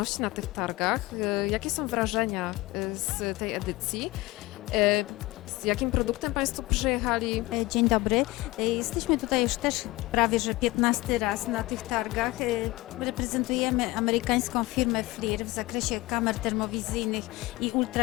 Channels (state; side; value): quieter; right; 20.6 dB